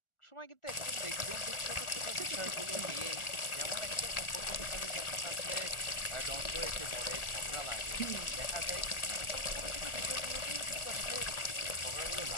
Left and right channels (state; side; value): late; right; 1.4 ms